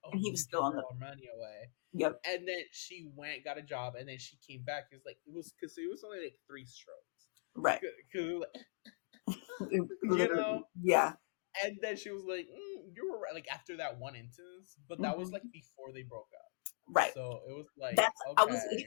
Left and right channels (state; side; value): silent; right; digital silence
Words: "Oh, and he you was give still your on girl the, our money away," yep. and then she went got a job, and then she came back. It's like it was because it was only like three strokes, Right. because you Literally, know. yeah. And then she was like, "You were right." Like after that one instance, but that was like Mhm. before they broke up. Right. So it was like, That's, I was